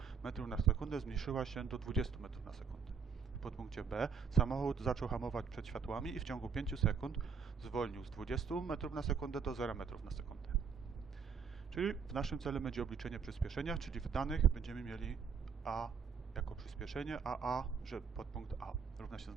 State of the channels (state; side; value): quieter; left; 6.2 dB